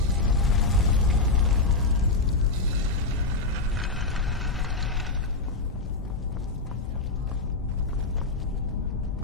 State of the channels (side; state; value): right; quieter; 3.4 dB